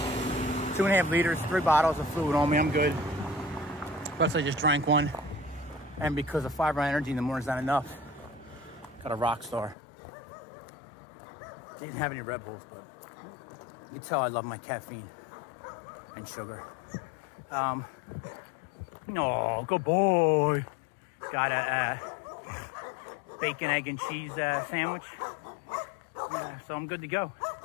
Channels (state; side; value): drops out; right; at 9.8 s